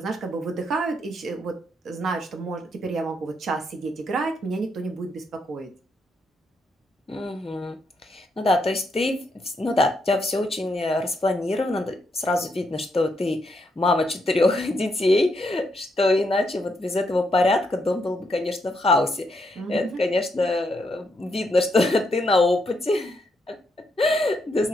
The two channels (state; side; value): normal; both; correlation 0.78